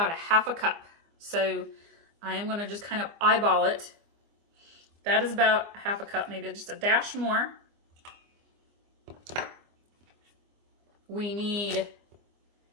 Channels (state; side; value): late; left; 24 ms